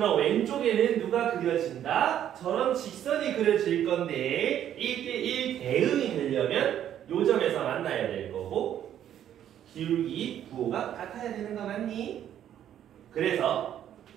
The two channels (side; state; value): left; quieter; 10.6 dB